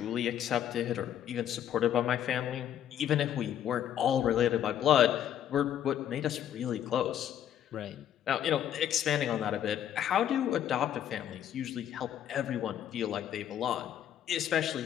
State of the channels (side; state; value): right; quieter; 10.4 dB